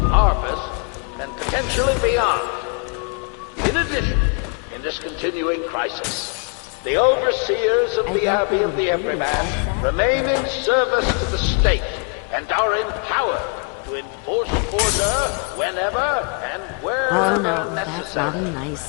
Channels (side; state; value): right; quieter; 37.7 dB